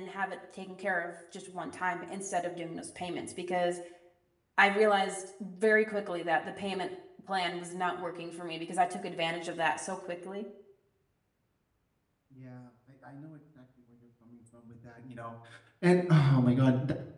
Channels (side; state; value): both; identical; correlation 1.00